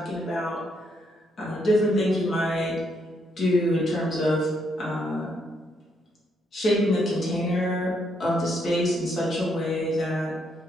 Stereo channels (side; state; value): both; normal; correlation 0.75